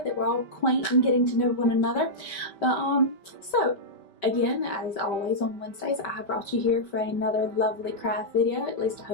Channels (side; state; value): right; late; 5.2 ms